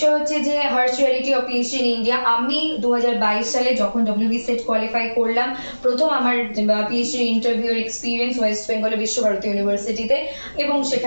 হচ্ছে যে harsh reality of PhD in India. আমি 2022 সালে যখন ডব্লিউবি সেট কোয়ালিফাই করলাম, প্রথম আমার পিএইচডি ইন্টারভিউর এক্সপিরিয়েন্স ওয়েস্ট বেঙ্গলের বিশ্বভারতী ইউনিভার্সিটিতে, এবং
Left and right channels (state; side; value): inverted; both; correlation -1.00